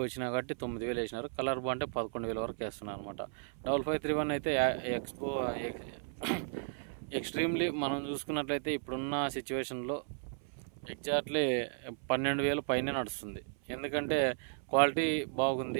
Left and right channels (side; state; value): left; silent; 55 dB below the other